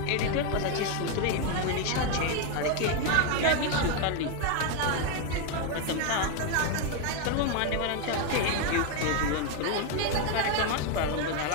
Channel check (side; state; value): both; different; correlation 0.01